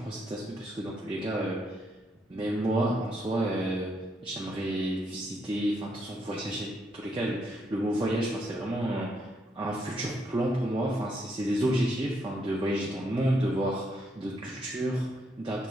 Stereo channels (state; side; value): normal; both; correlation 0.76